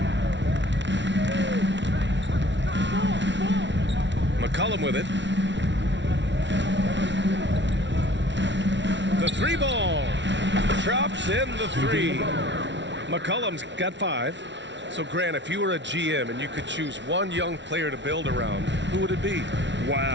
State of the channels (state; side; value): late; left; 0.52 ms